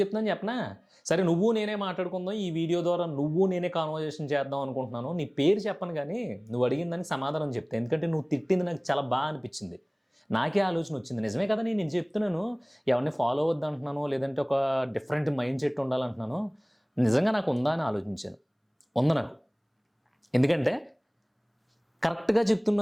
చెప్పనా? సరే, నువ్వు నేనే మాట్లాడుకుందాం, ఈ వీడియో ద్వారా నువ్వు నేనే కాన్వర్జేషన్ చేద్దాం అనుకుంటున్నాను. నీ పేరు చెప్పను, కానీ నువ్వు అడిగిన దానికి సమాధానం చెప్తే, ఎందుకంటే నువ్వు తిట్టింది నాకు చాలా బాగా అనిపించింది. నాకే ఆలోచన వచ్చింది, నిజమే కదా, నేను చెప్తున్నాను ఎవరిని ఫాలో అవ్వద్దు అంటున్నాను, లేదంటే ఒక డిఫరెంట్ మైండ్ సెట్ ఉండాలంటున్నాను. నిజంగా నాకు ఉందా అని ఆలోచించాను. ఉంది నాకు. ఎందుకంటే కరెక్ట్గా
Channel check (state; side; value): identical; both; correlation 1.00